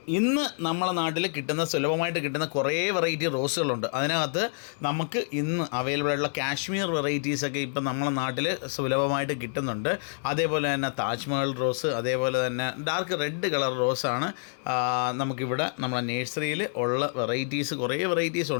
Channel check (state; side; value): silent; right; 60 dB below the other